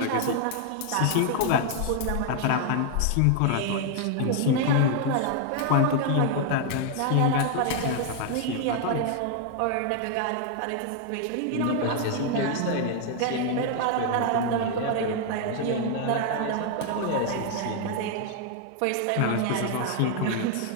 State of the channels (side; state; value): both; different; correlation 0.00